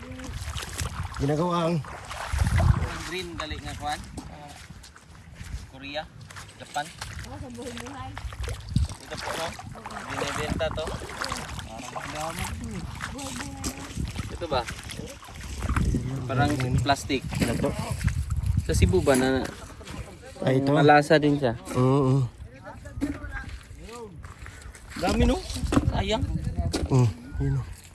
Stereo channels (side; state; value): both; identical; correlation 1.00